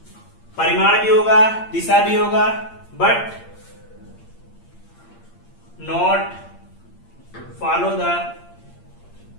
परिमाण भी होगा, दिशा भी होगा, but not follow the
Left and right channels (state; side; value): late; right; 8.7 ms